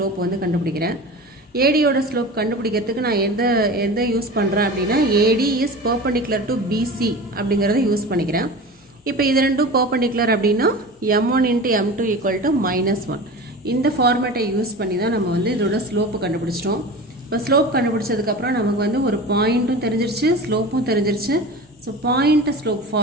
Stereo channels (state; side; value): normal; both; correlation 0.33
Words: வந்து கண்டுபிடிக்கிறேன். ஏடியோட ஸ்லோப் கண்டுபிடிக்கிறதுக்கு நான் எந்த யூஸ் பண்ணுறேன் அப்படின்னா, AD is perpendicular to BC அப்படிங்கிறத யூஸ் பண்ணிக்கிறேன். இப்போ இது ரெண்டும் பர்பண்டிகுலர் அப்படின்னா m1 into m2 equal to -1. இந்த ஃபார்மேட்டை யூஸ் பண்ணி தான் நம்ம வந்து இதோட ஸ்லோப்பு கண்டுபிடிச்சிட்டோம். இப்போ ஸ்லோப் கண்டுபிடிச்சதுக்கப்புறம் நமக்கு வந்து ஒரு பாயிண்ட்டும் தெரிஞ்சிருச்சு, ஸ்லோப்பும் தெரிஞ்சிருச்சு. So point slope